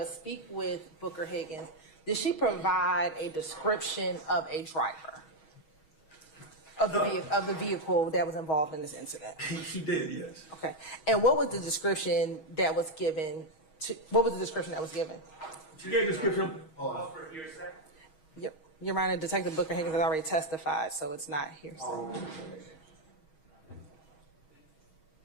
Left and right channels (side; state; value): right; late; 6.3 ms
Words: speak with Booker Higgins, did she provide a description of a driver of the vehicle that was involved in this incident? She did, yes. Okay. And what was the description that was given? What was the description that was given? She gave a description. Yep. Your Honor, Detective Booker Higgins has already testified, so it's not hearsay.